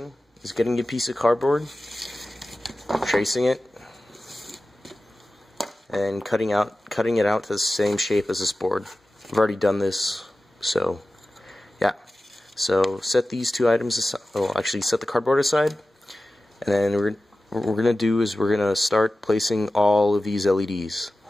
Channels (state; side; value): normal; both; correlation 0.95